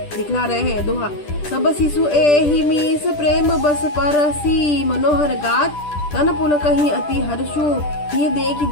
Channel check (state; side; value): late; right; 10 ms